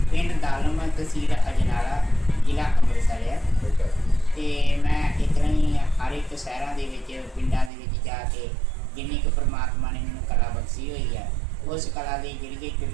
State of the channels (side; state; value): left; drops out; at 7.7 s